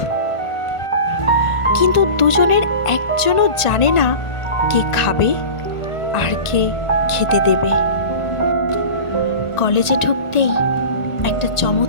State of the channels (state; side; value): late; right; 1.5 ms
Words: কিন্তু দুজনের একজনও জানে না কে খাবে আর কে খেতে দেবে। কলেজে ঢুকতেই একটা